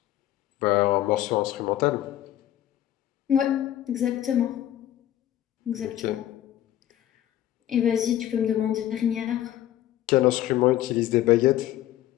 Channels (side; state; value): right; quieter; 12.8 dB